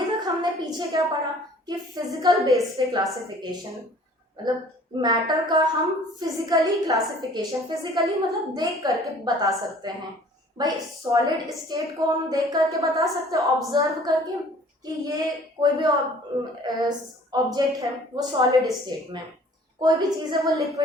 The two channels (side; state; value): both; normal; correlation 0.52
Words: तक हमने पीछे क्या पढ़ा कि फिजिकल बेस पे क्लासिफिकेशन, मतलब मैटर का हम फिजिकली क्लासिफिकेशन, फिजिकली मतलब देख करके बता सकते हैं। भाई सॉलिड स्टेट को हम देख करके बता सकते हैं, ऑब्जर्व करके कि ये कोई भी ऑब्जेक्ट है वो सॉलिड स्टेट में, कोई भी चीज है वो